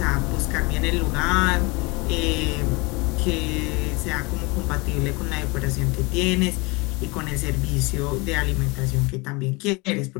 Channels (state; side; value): quieter; right; 26.7 dB